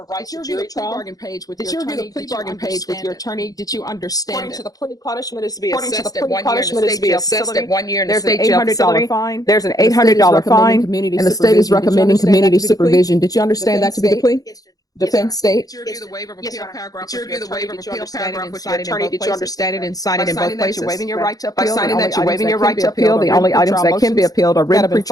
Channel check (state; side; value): late; right; 0.18 ms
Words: right to jury trial. Did you review the plea bargain page with your attorney? Did you understand According it? to the plea, punishment is to be According to the assessed at plea, 1 year in punishment the is to state be jail assessed facility. at 1 year in the There's an state jail $800 facility. fine. There's an And the state is $800 fine, recommending and the state is recommending community supervision. supervision. Did you understand that to be the plea? Yes, Judge. Defense state. Did you review the waiver of Yes, appeal Your Honor. paragraph? Did you review the waiver of appeal paragraph with your Sign it in attorney? both Did you places? understand it and sign it in By both signing that, places? you're waiving your right to By appeal. signing The that, you're only waiving items your that right can to be appealed appeal. The are only written items that pretrial can be motions appealed are that written have been pretrial